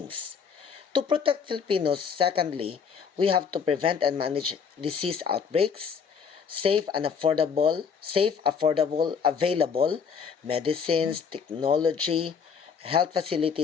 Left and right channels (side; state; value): right; quieter; 6.4 dB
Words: To protect Filipinos, secondly, we have to prevent and manage disease outbreaks, safe, affordable, available medicines, technology, health